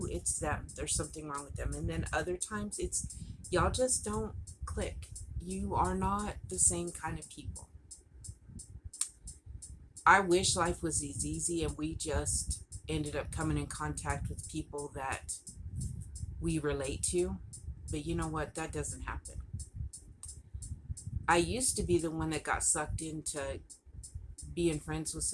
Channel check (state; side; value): identical; both; correlation 1.00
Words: it's them. There's something wrong with them. And then other times, it's y'all just don't click. You are not the same kind of people. I wish life was as easy and we just ended up coming in contact with people that we relate to. But you know what? That doesn't happen. I used to be the one that got sucked into being friends with